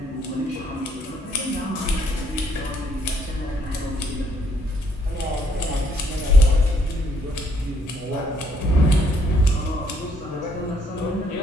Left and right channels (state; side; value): normal; both; correlation 0.68